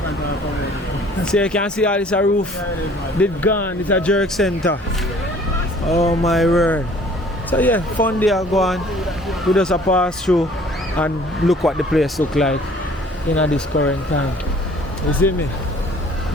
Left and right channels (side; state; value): both; normal; correlation 0.54